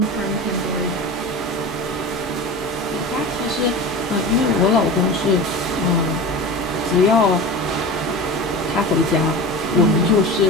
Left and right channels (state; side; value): normal; both; correlation 0.31